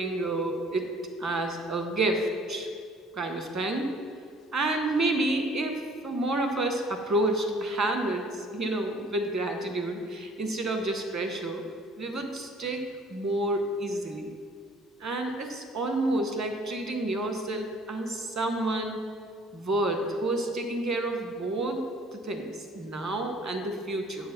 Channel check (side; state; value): both; normal; correlation 0.55